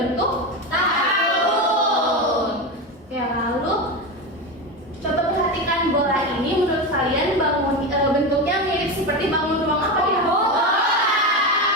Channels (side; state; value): both; normal; correlation 0.18